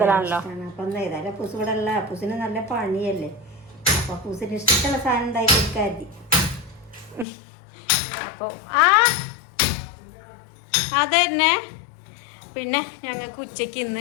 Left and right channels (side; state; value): right; drops out; at 7.2 s